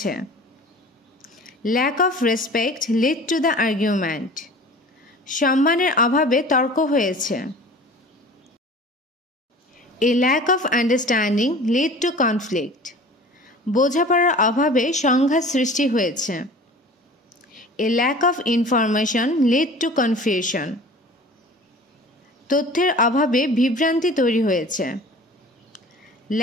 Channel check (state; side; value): normal; both; correlation 0.42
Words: Lack of respect led to the argument. সম্মানের অভাবে তর্ক হয়েছে। A lack of understanding led to conflict. বোঝাপড়ার অভাবে সংঘাত সৃষ্টি হয়েছে। A lack of information led to confusion. তথ্যের অভাবে বিভ্রান্তি তৈরি হয়েছে।